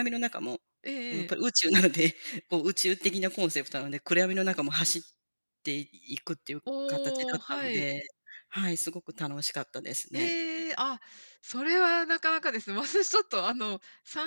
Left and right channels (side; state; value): both; inverted; correlation -1.00